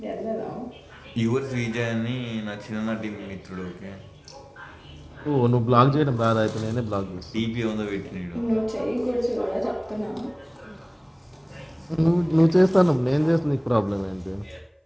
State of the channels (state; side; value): identical; both; correlation 1.00